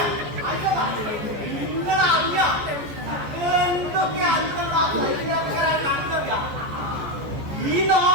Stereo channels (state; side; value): late; left; 14 ms